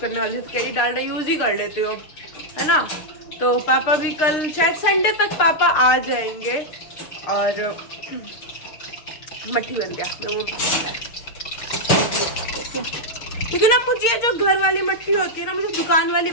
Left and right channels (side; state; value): right; late; 6.6 ms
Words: वाली थी, कह रही डालडा यूज़ ही कर लेते हो अब, है ना। तो पापा भी कल शायद संडे तक पापा आ जाएंगे, और मट्ठी बन गया। क्योंकि ना मुझे जो घर वाली मट्ठी होती है ना, मुझे दुकान वाली